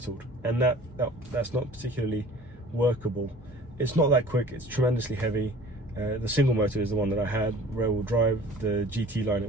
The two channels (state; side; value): normal; both; correlation 0.46